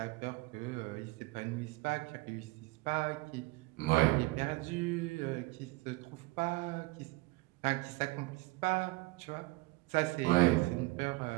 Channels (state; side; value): quieter; left; 23.4 dB